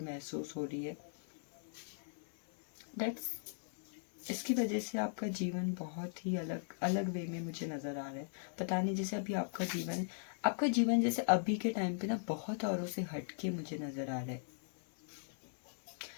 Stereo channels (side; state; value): right; silent; 52 dB below the other